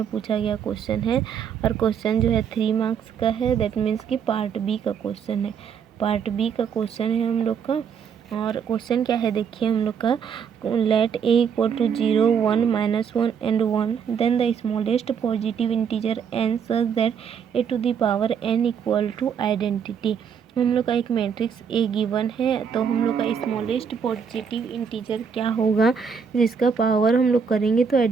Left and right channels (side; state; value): left; quieter; 6.9 dB